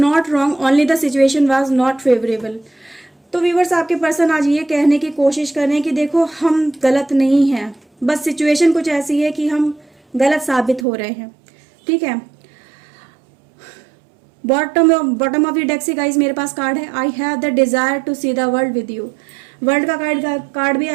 wrong, only the situation was not favourable. तो व्यूअर्स आपके पर्सन आज ये कहने की कोशिश कर रहे हैं कि देखो हम गलत नहीं हैं, बस सिचुएशन कुछ ऐसी है कि हम गलत साबित हो रहे हैं, ठीक है। बॉटम ऑफ द डेक से गाइज मेरे पास कार्ड है, I have the desire to see the world with you. World का कार्ड भी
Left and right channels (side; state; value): left; drops out; at 10.9 s